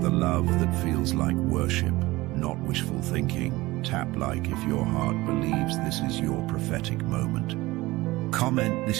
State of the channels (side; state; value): left; quieter; 19.8 dB